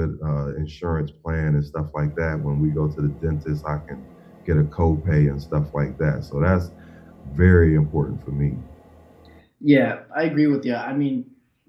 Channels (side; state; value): both; identical; correlation 1.00